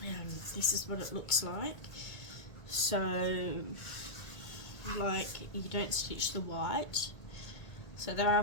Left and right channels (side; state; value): right; late; 1.8 ms